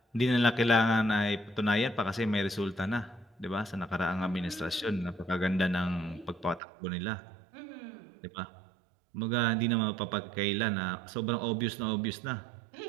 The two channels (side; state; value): left; drops out; at 6.6 s